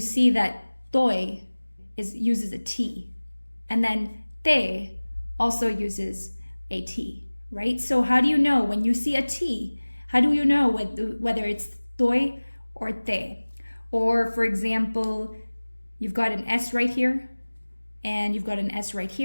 see that toy uses a T, and then te also uses a T, right? So how do you know when you see a T, how do you know whether it's toy or te? Or for example, you've got an S right here, and you've got an S right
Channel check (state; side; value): inverted; both; correlation -1.00